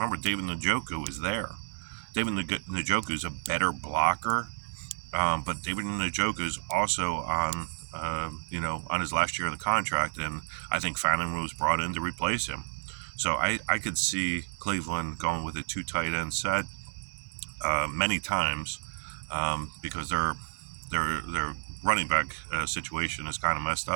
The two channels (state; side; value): silent; left; 57 dB below the other